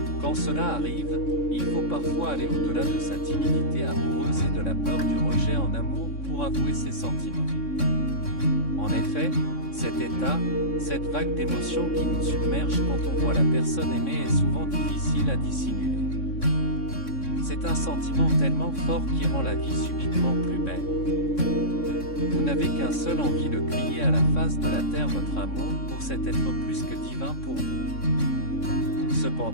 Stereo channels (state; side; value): late; right; 3.6 ms